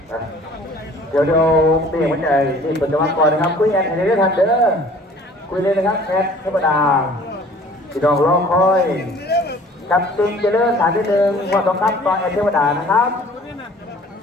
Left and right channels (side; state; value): both; normal; correlation 0.50